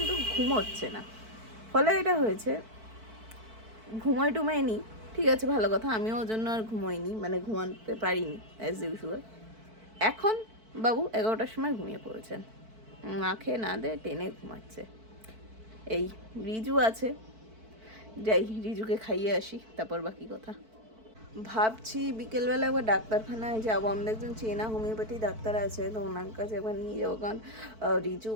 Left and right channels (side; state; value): left; late; 4.5 ms